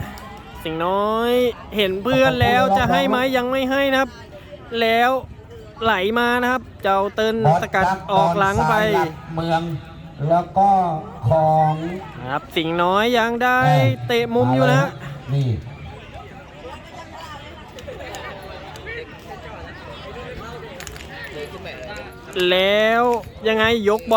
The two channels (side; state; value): both; identical; correlation 1.00